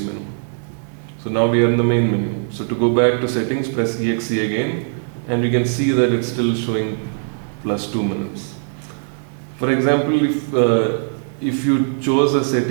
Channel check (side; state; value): left; silent; digital silence